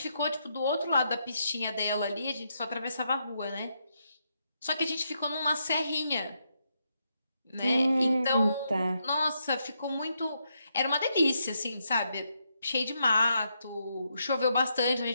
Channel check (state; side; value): inverted; both; correlation -0.80